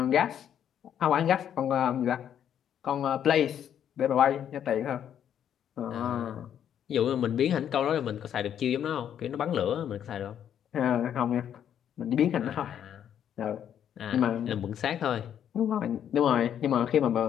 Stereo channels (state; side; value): quieter; right; 9.5 dB